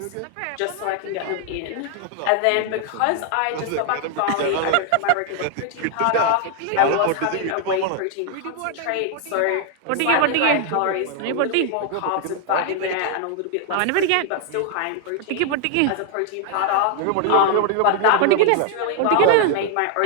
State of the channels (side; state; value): both; different; correlation 0.00